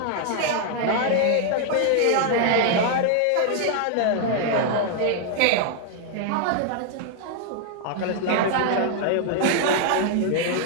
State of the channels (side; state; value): both; different; correlation 0.00